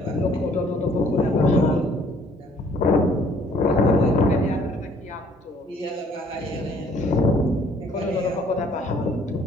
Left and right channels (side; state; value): both; normal; correlation 0.60